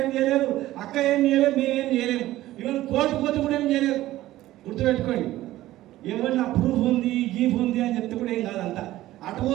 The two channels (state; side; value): quieter; left; 15.6 dB